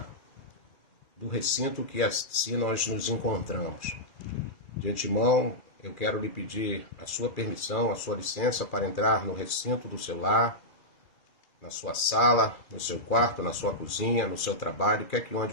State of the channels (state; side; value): late; right; 2.4 ms